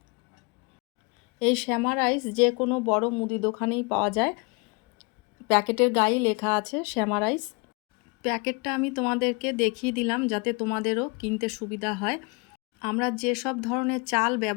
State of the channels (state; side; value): quieter; right; 30.5 dB